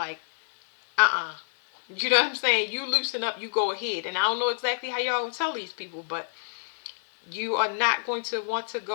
uh-uh. You know what I'm saying? You loosen up, you go ahead. And I don't know exactly how y'all gonna tell these people, but you are not going to want to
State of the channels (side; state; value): right; silent; 60 dB below the other